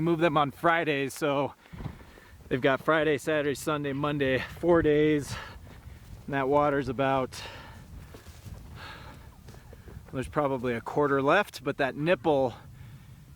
moved them on Fridays, so they've got Friday, Saturday, Sunday, Monday, 4 days. And that water's about, there's probably a quarter left, but that nipple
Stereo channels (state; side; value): identical; both; correlation 1.00